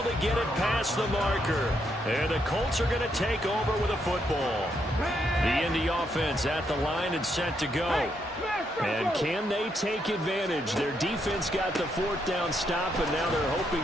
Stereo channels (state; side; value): normal; both; correlation 0.77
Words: to get it past the marker. And the Colts are going to take over with a football. The Indy offense at the line and set to go. And can they take advantage? Their defense got the 4th down stop, and now they're